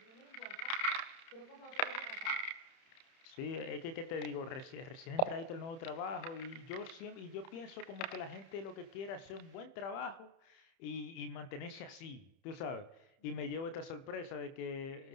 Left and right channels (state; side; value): late; right; 30 ms